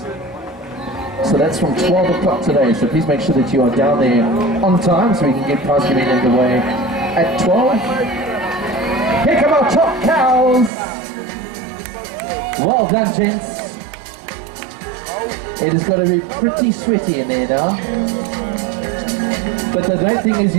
So that's from 12 o'clock today. So please make sure that you are down there on time so we can get prize giving underway at 12. Here come our top cows. Well done, gents. It has got to be pretty sweaty in there now. But the great thing is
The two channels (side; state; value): left; drops out; at 10.7 s